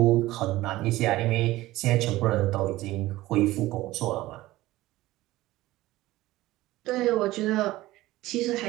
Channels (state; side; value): quieter; left; 17.3 dB